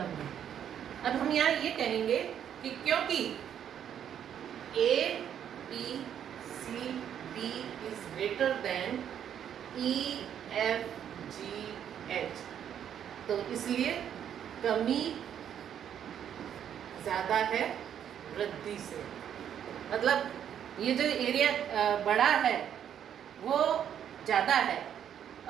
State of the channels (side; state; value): left; quieter; 9.3 dB